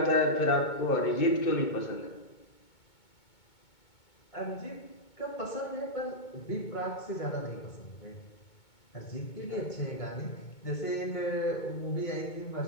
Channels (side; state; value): right; late; 2.2 ms